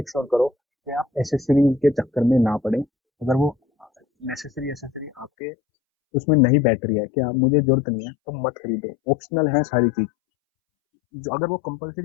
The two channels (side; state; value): right; drops out; at 5.3 s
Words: श्योर करो कि आप एसेसरीज के चक्कर में ना पड़े। अगर वो नेसेसरी एसेसरी आपके उसमें नई बैटरी है कि आप, मुझे जरूरत नहीं है, तो मत खरीदो, ऑप्शनल है सारी चीज। जो अगर वो